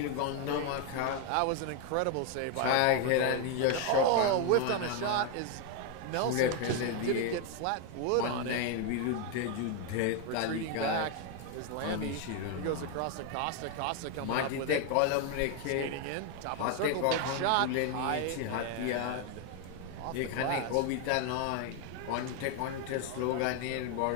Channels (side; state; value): both; different; correlation 0.01